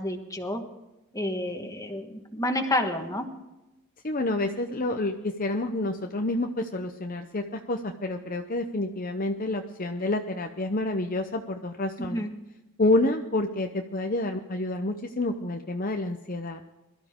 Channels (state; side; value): normal; both; correlation 0.37